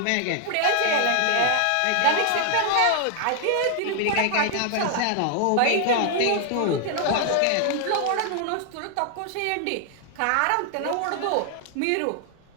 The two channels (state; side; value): different; both; correlation 0.00